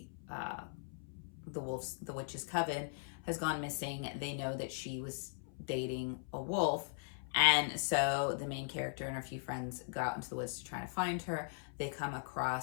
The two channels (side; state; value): right; silent; 52 dB below the other